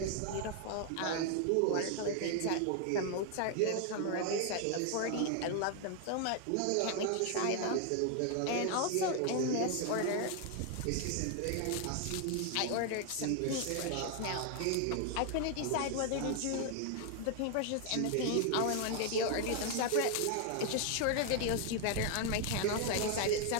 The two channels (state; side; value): different; both; correlation 0.00